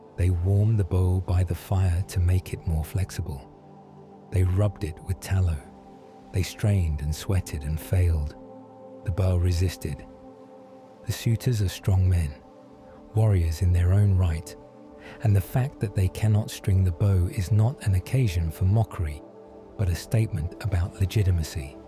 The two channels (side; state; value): both; identical; correlation 1.00